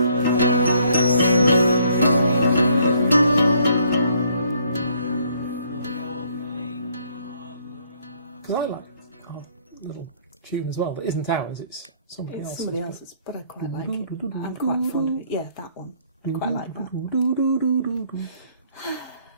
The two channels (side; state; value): both; inverted; correlation -0.65